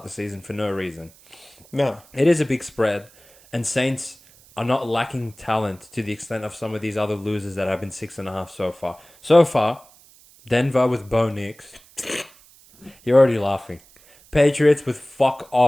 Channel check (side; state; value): right; noise; hiss, 26 dB below the sound